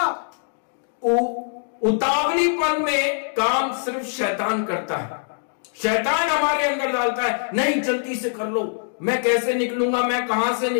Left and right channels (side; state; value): right; silent; digital silence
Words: उतावलीपन में काम सिर्फ शैतान करता है। शैतान हमारे अंदर डालता है, नहीं जल्दी से कर लो, मैं कैसे निकलूंगा, मैं कहां से